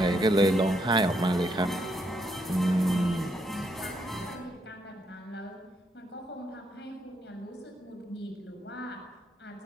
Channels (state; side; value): normal; both; correlation 0.76